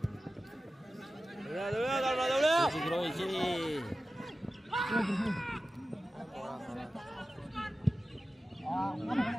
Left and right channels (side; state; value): both; normal; correlation 0.94